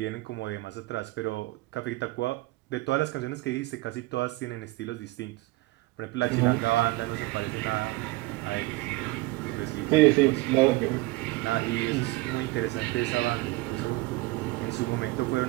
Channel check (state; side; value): quieter; left; 20.5 dB